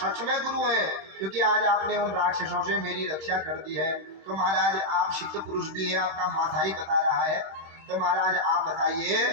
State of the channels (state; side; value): late; left; 26 ms